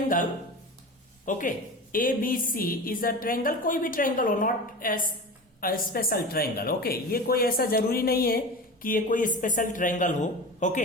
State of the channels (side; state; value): both; normal; correlation 0.31